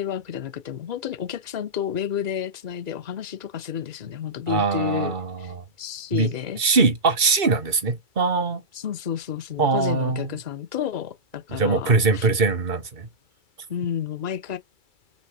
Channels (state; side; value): late; left; 2.6 ms